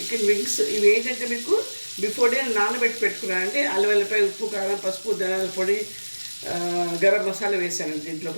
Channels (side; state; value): both; inverted; correlation -1.00